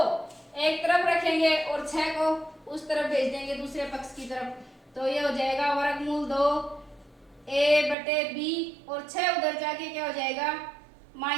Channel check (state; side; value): drops out; left; at 8.0 s